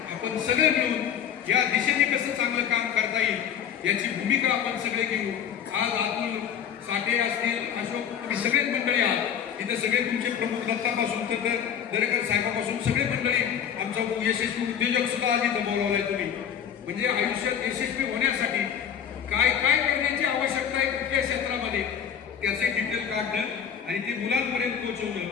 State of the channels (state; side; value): quieter; right; 8.6 dB